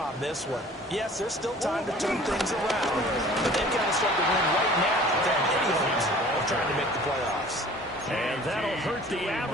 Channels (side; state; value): both; normal; correlation 0.48